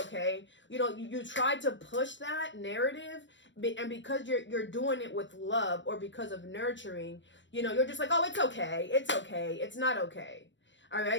You know, you try to push that narrative, and because you're doing it with love or because of nurturing, you know, you're just like, oh, it's okay, it's not okay. All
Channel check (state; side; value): late; right; 0.54 ms